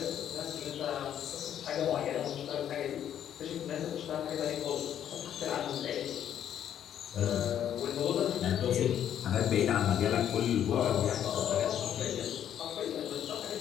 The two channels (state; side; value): quieter; right; 10.0 dB